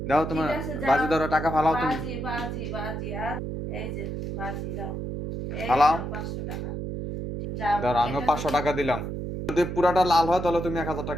দাও ঠিক তোমার। আছে, যাও। বাজি ধরো, টাকা ফালাও তুমি। বাজি বাজি বাজি আর এই যে বাজি দাও। এই ফালাও। নাও 500 টাকা। যাও। ধরো আমিও এটা পাঁচশো যদি টাকা দিলাম। যদি পুরাটা লাল হয় তাহলে তুমি 1000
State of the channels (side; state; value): right; noise; hum, 5 dB below the sound